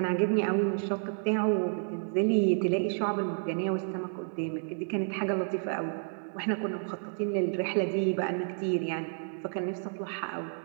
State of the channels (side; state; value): left; silent; digital silence